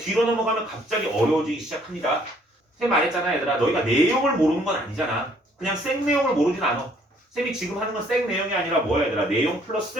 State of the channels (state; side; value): normal; both; correlation 0.62